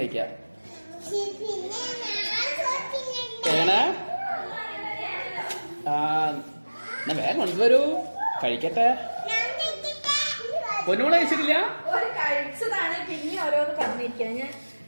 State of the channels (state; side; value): inverted; both; correlation -1.00